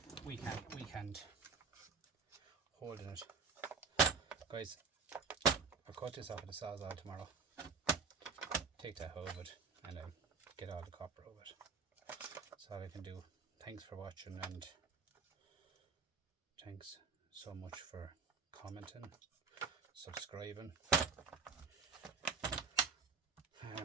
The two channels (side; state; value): left; quieter; 5.2 dB